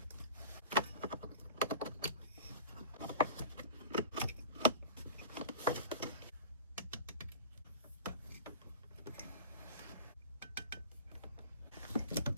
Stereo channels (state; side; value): inverted; both; correlation -0.35